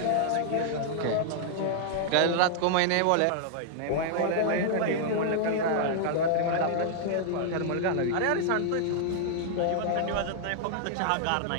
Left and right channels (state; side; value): different; both; correlation -0.01